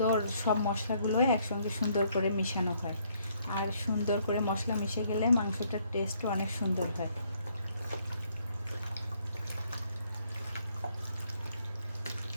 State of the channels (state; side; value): inverted; both; correlation -0.68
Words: সব মশলাগুলো একসঙ্গে সুন্দর করে মিশানো হয়, আর সুন্দর করে মশলা মিশে গেলে মাংসটার টেস্টও অনেক সুন্দর হয়।